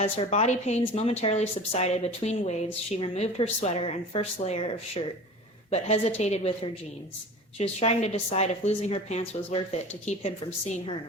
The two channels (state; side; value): normal; both; correlation 0.37